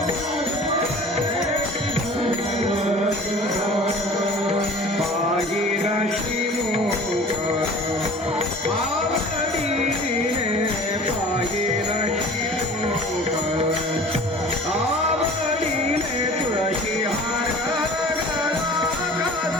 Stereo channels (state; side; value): normal; both; correlation 0.44